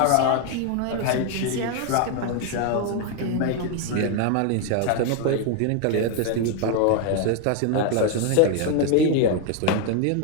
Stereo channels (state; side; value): different; both; correlation 0.01